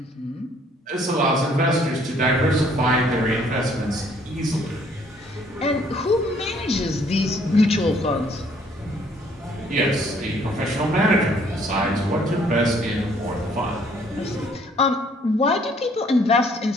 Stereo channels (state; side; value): normal; both; correlation 0.62